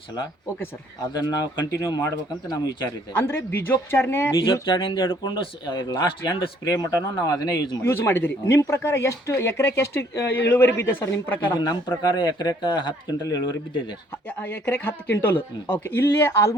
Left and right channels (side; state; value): both; normal; correlation 0.62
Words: ಸಲ. Okay sir. ಅದನ್ನು ನಾವು ಕಂಟಿನ್ಯೂ ಮಾಡ್ಬೇಕಂತ ನಮ್ಮ ವಿಚಾರ ಇದೆ. ಅಂದರೆ ಬೀಜೋಪಚಾರದಿಂದ ಹಿಡ್ಕೊಂಡು ಲಾಸ್ಟ್ ಎಂಡ್ ಸ್ಪ್ರೇ ಮಟನು ನಾವು ಅದನ್ನೇ ಯೂಸ್ ಮಾಡಿದಿರಿ. ನಿಮ್ಮ ಪ್ರಕಾರ ಎಷ್ಟು ಎಕರೆಗೆ ಎಷ್ಟು ಇಳುವರಿ ಬಿದ್ದೆ ಸರ್ ನಿಮ್ಮ ಪ್ರಕಾರ? ನಮ್ಮ ಪ್ರಕಾರ ಎಕರೆಗೆ 10 ಕ್ವಿಂಟಲ್ ಇಳುವರಿ ಬಿದ್ದಿದೆ. ಎಕರೆಗೆ 10 ಕ್ವಿಂಟಲ್. ಓಕೆ. ಇಲ್ಲಿ